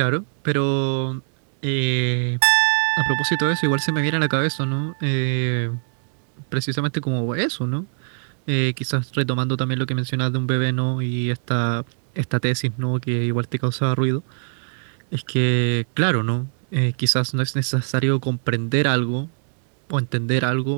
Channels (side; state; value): left; silent; digital silence